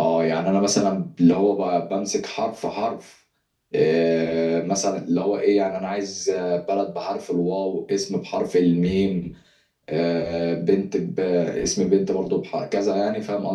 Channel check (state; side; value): identical; both; correlation 1.00